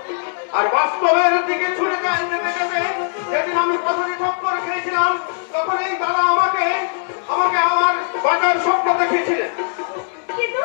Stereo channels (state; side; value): silent; right; digital silence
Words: আর বাস্তবের দিকে ছুটে যেতে যেতে যেদিন আমি প্রথমে ঠক্কর খেয়েছিলাম, তখন এই দাদা আমাকে আমার বাজার স্বপ্ন দেখিয়েছিলেন। কিন্তু